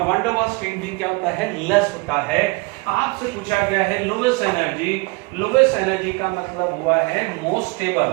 वंडरवॉल स्ट्रेन भी क्या होता है? लेस होता है। आपसे पूछा गया है लोवेस्ट एनर्जी। लोवेस्ट एनर्जी का मतलब हुआ है मोस्ट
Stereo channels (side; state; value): left; quieter; 26.8 dB